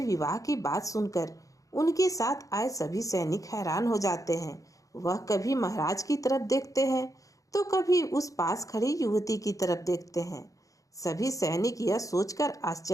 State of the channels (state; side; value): late; right; 0.16 ms